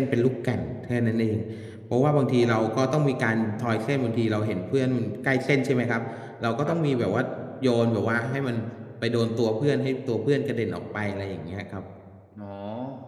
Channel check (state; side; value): identical; both; correlation 1.00